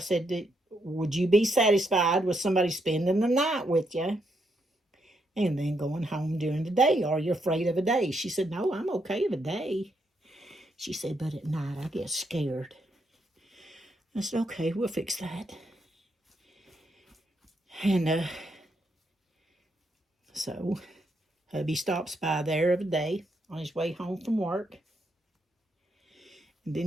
would you be satisfied with somebody spending the night with you and then going home during the day? Are you afraid of a day? She said, no, I'm okay with a day. She said, but at night I get scared. I said, okay, we'll fix that. And so hubby stops by there every day on his way home from work. And then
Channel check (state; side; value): normal; both; correlation 0.78